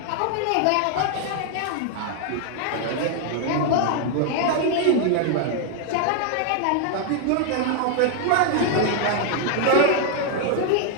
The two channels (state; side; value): different; both; correlation 0.00